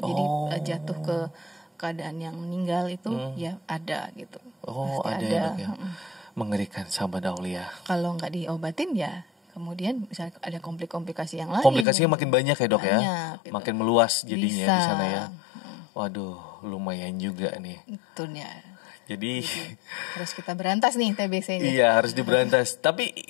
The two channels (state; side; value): drops out; right; at 11.9 s